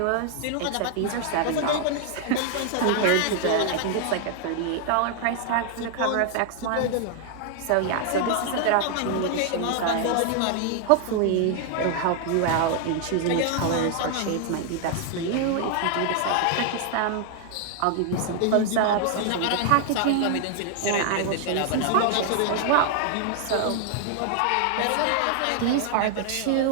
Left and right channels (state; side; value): different; both; correlation 0.00